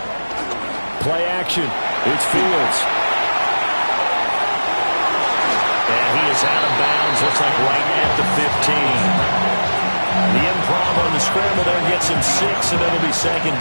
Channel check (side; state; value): both; inverted; correlation -1.00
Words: Play action. It's Fields. And he is out of bounds, looks like right at the 15. The improv on the scramble there gets him 6, and it'll be 2nd